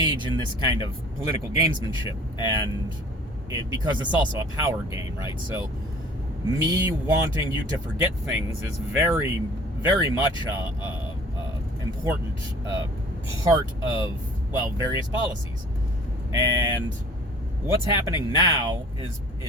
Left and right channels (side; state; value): both; normal; correlation 0.49